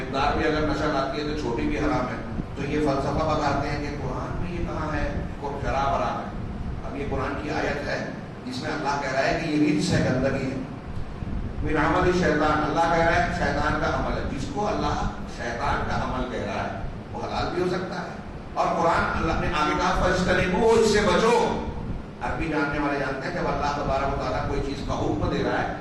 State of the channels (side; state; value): both; identical; correlation 1.00